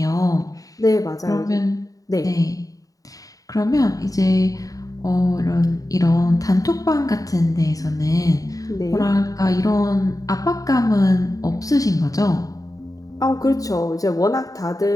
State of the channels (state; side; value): late; right; 0.17 ms